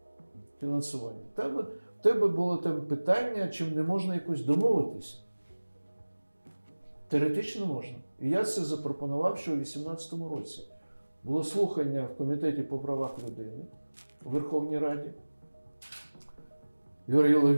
фінансування. Там тебе було там питання, чим не можна якось домовитися. Теоретично можна. І я це запропонував ще у 2018 році. Було слухання в Комітеті по правах людини у Верховній Раді. Юрій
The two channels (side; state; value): both; inverted; correlation -1.00